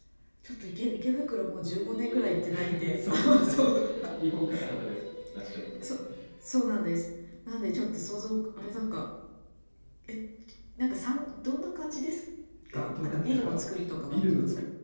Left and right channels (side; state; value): both; inverted; correlation -1.00